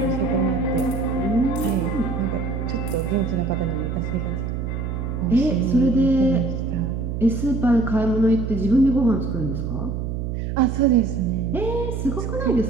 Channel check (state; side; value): noise; right; hum, 3 dB below the sound